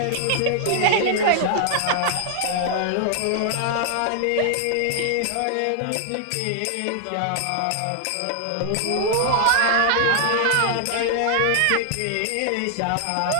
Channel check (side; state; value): both; different; correlation -0.01